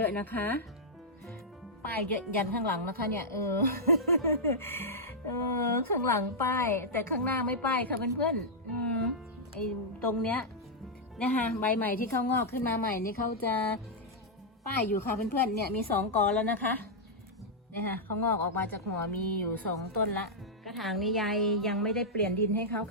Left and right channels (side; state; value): both; normal; correlation -0.07